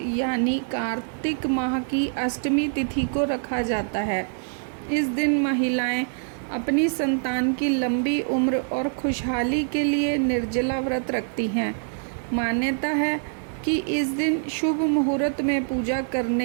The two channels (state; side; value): silent; left; digital silence